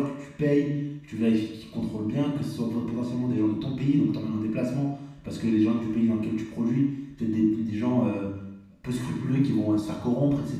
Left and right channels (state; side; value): identical; both; correlation 1.00